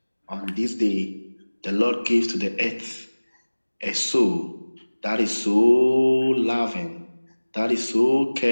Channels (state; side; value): inverted; both; correlation -1.00